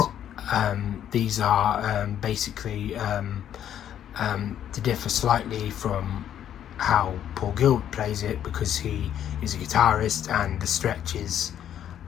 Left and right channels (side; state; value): right; quieter; 10.3 dB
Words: these are basically to differ slightly from how Paul Gilbert plays it, because he is a guitarist and the stretches